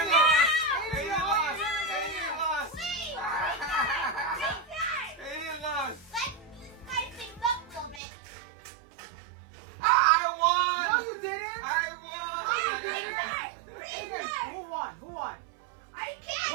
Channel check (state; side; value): drops out; left; at 8.0 s